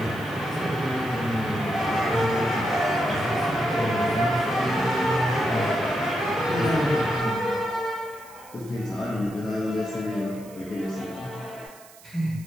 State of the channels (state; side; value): noise; right; hiss, 22 dB below the sound